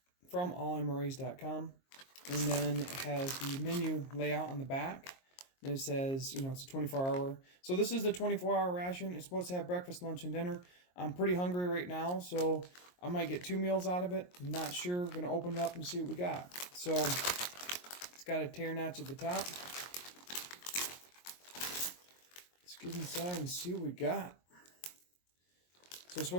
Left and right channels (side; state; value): right; late; 22 ms